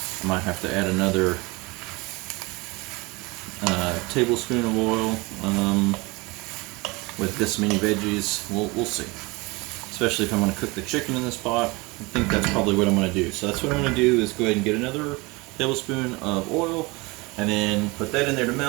I might have to add another tablespoon of oil with this many veggies. We'll see. Especially if I'm going to cook the chicken in this pot. I think that's probably what I'm going to do. So that's what I'm going to do is go ahead and get another tablespoon of oil and then put that in there to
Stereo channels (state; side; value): quieter; left; 24.9 dB